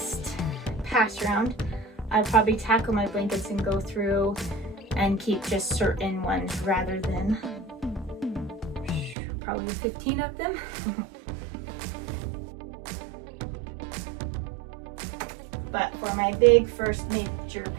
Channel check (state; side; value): drops out; left; at 9.2 s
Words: pass round, I'll probably tackle my blankets and go through and keep just certain ones rather than probably 15 of them. But for my big first major